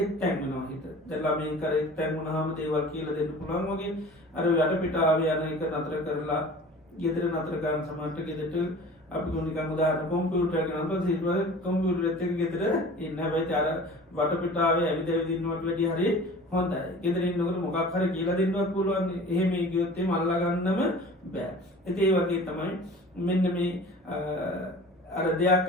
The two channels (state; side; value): normal; both; correlation 0.42